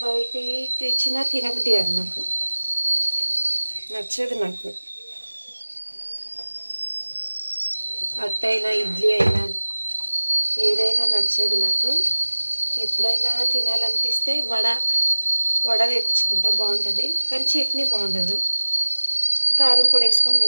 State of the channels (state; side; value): inverted; both; correlation -1.00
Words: బయట తెచ్చినా తినబుద్ధి కాదు, నాకు నచ్చదు. నాకు అట్టయినా ఇడ్లీ అయినా ఏదైనా నచ్చదు నాకు. ఎప్పుడైనా తినాలనిపిస్తే వడ తెప్పించుకుంటా, బాగుంటుంది. కానీ చట్నీ బాగుండదు. కారం పొడి వేసుకొని